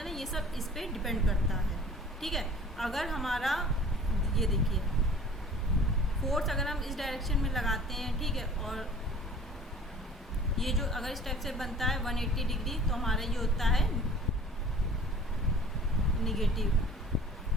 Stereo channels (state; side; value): normal; both; correlation 0.47